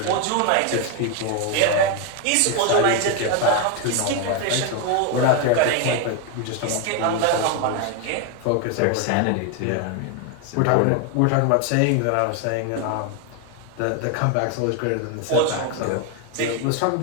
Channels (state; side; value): different; both; correlation 0.01